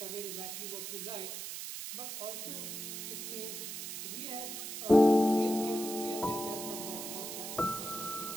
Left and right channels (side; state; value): right; noise; hiss, 6 dB below the sound